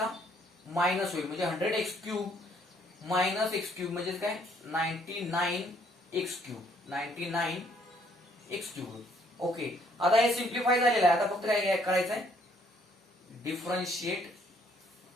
मायनस होईल. म्हणजे 100 x cube minus x cube म्हणजे काय 99 एक्स क्यूब. ओके, आता हे सिम्प्लिफाय झालेलं आहे. आता फक्त काय करायचं आहे differentiate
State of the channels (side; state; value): both; normal; correlation 0.66